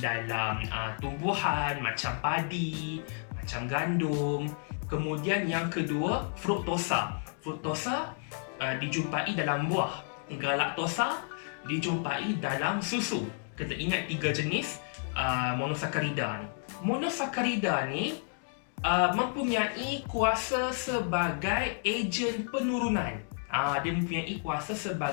tumbuhan macam padi, macam gandum. Kemudian yang kedua, fruktosa. Fruktosa dijumpai dalam buah. Galaktosa dijumpai dalam susu. Kita ingat 3 jenis monosakarida ni. Monosakarida ni mempunyai kuasa sebagai ejen penurunan. Dia mempunyai kuasa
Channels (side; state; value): right; silent; 57 dB below the other